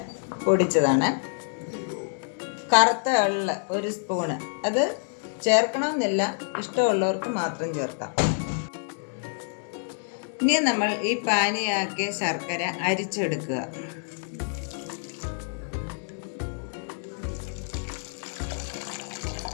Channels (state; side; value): silent; right; digital silence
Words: പൊടിച്ചതാണ്. കറുത്ത എള്ള് 1 സ്പൂണ്, അത് ചേർക്കണമെന്നില്ല, ഇഷ്ടമുള്ളവർക്ക് മാത്രം ചേർക്കാം. ഇനി നമ്മൾ ഈ പാനിയാക്കിയ ശർക്കര അരിച്ചെടുക്കുക.